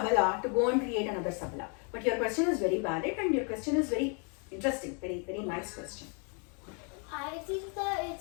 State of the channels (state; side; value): quieter; right; 38.0 dB